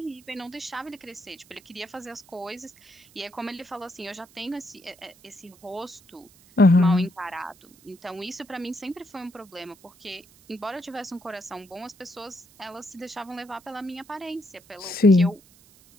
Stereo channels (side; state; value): right; noise; hiss, 26 dB below the sound